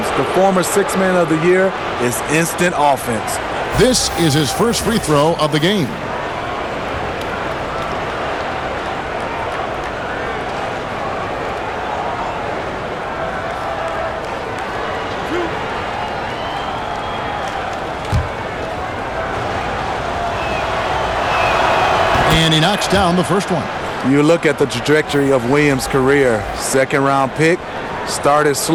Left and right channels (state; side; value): identical; both; correlation 1.00